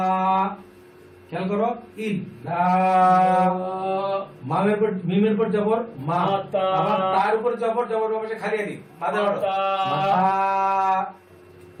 খেয়াল করো ইল্লা মামের উপর মিমের উপর জবর মা মাতা। আবার তার উপর জবর জবর বাম পাশে খালি আলিফ মাদার হরফ। মাতা। মাতা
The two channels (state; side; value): identical; both; correlation 1.00